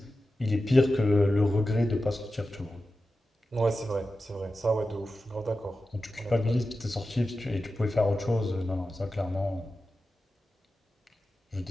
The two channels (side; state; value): both; normal; correlation 0.93